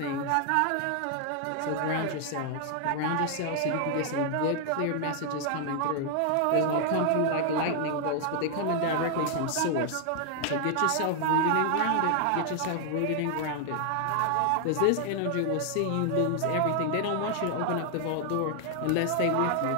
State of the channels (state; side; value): different; both; correlation 0.00